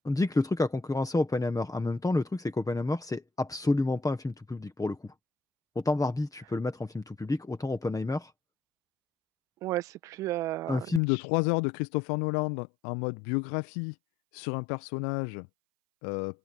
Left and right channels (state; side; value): drops out; right; at 11.0 s